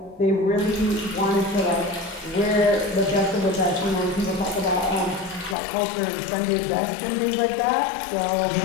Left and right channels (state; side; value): drops out; right; at 5.6 s